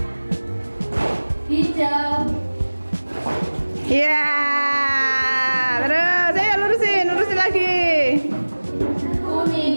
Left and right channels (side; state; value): both; inverted; correlation -1.00